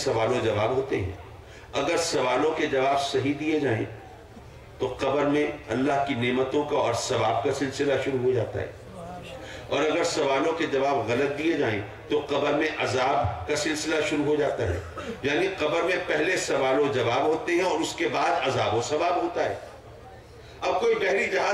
و جواب ہوتے ہیں، اگر سوالوں کے جواب صحیح دیے جائیں تو قبر میں اللہ کی نعمتوں کا اور ثواب کا سلسلہ شروع ہو جاتا ہے، اور اگر سوالوں کے جواب غلط دیے جائیں تو قبر میں عذاب کا سلسلہ شروع ہو جاتا ہے۔ یعنی قبر میں پہلے سوال و جواب ہوتے ہیں اور اس کے بعد عذاب و ثواب ہوتا ہے۔ اب کوئی بحری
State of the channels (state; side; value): identical; both; correlation 1.00